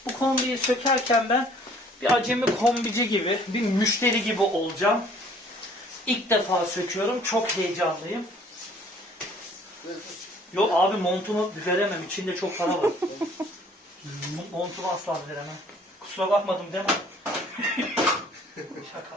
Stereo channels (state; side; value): normal; both; correlation 0.56